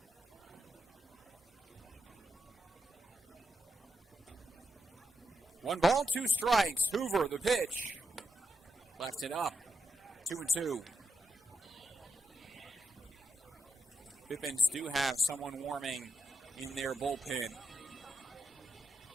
1 ball, 2 strikes. Hoover, the pitch. Left it up. 2-2. Pippins do have someone warming in their bullpen.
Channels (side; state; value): both; normal; correlation 0.85